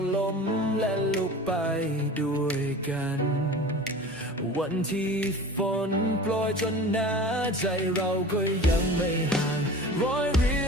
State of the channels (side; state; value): both; normal; correlation 0.38